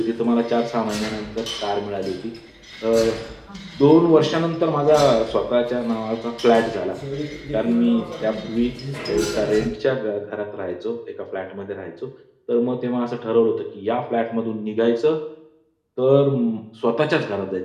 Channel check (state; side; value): identical; both; correlation 1.00